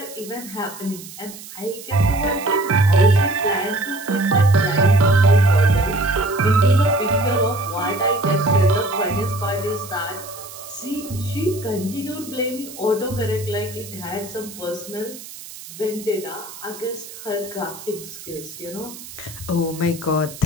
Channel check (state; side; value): noise; right; hiss, 15 dB below the sound